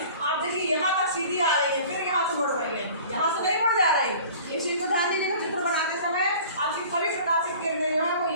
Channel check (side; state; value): both; inverted; correlation -0.45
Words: आप देखिए यहाँ तक सीधी आ रही है, फिर यहाँ से मुड़ रही है, यहाँ से नहीं मुड़ जा रही। इस चीज़ को ध्यान दीजिएगा, चित्र बनाते समय आपकी सभी प्रकाशिक किरणें जो है वो